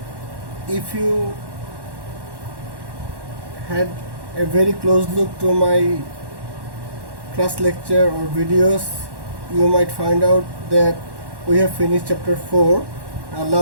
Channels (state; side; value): late; left; 1.1 ms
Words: If you had a very close look to my class lecture or videos, you might find out that we have finished chapter 4. Our